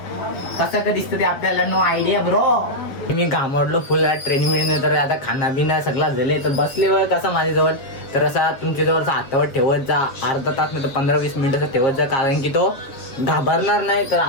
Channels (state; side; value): late; right; 7.3 ms